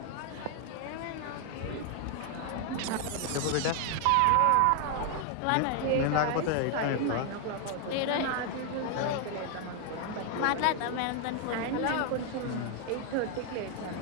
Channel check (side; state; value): both; different; correlation 0.00